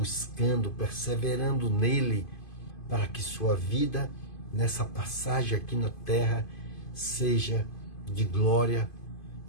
perseverando nele, para que sua vida, nessa passagem aqui na terra, seja de glória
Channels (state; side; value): late; right; 2.5 ms